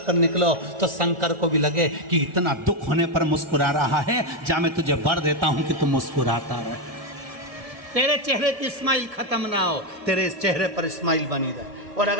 कर निकलो, तो शंकर को भी लगे कि इतना दुख होने पर मुस्कुरा रहा है, जा मैं तुझे वर देता हूं कि तू मुस्कुराता रहे, तेरे चेहरे की स्माइल खत्म ना हो, तेरे चेहरे पर स्माइल बनी रहे। और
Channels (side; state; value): left; late; 1.7 ms